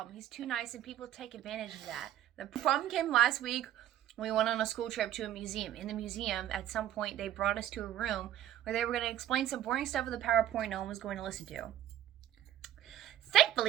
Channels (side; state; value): left; quieter; 11.8 dB